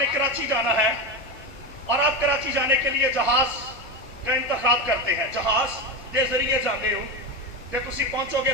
कराची जाना है और आप कराची जाने के लिए जहाज का इंतखाब करते हैं। जहाज के जरिए जाते हो तो तुसी पहुंचोगे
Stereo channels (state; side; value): normal; both; correlation 0.16